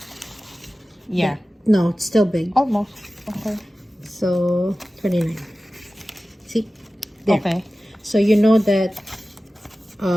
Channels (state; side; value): normal; both; correlation 0.96